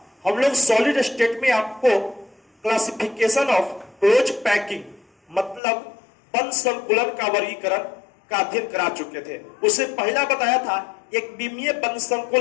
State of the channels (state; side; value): drops out; right; at 5.6 s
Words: हम लोग सॉलिड स्टेट में आपको क्लासिफिकेशन ऑफ क्लोज पैकिंग मतलब बंद संकुलन का वर्गीकरण का अध्ययन करा चुके थे। उससे पहला बताया था एक विमीय बंद